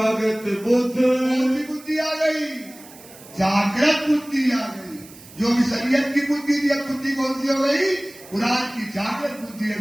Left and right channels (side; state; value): right; noise; hiss, 20 dB below the sound